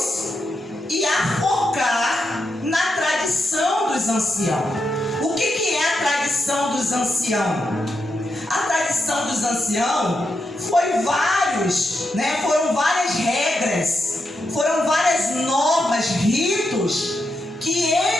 e a focar na tradição dos anciãos. O que é a tradição dos anciãos? A tradição dos anciãos foram várias regras, foram várias normas, ritos que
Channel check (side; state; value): both; normal; correlation 0.84